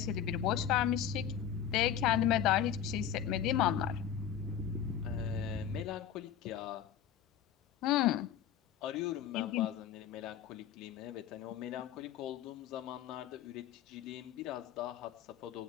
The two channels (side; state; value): right; quieter; 9.2 dB